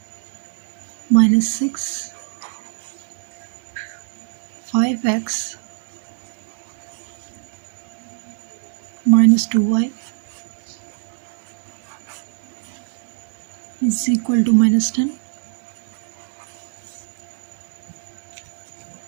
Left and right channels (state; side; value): silent; left; digital silence